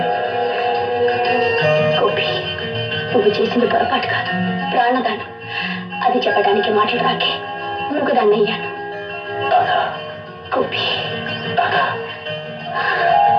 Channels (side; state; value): both; identical; correlation 1.00